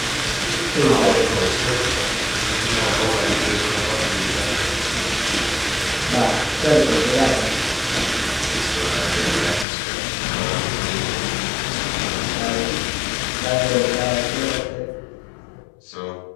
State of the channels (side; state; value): right; drops out; at 9.7 s